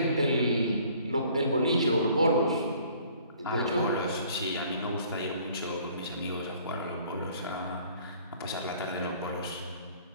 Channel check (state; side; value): inverted; both; correlation -0.56